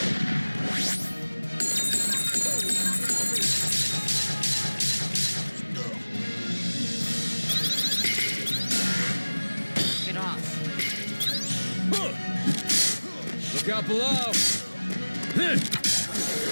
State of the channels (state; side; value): inverted; both; correlation -1.00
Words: Get off. Look out below!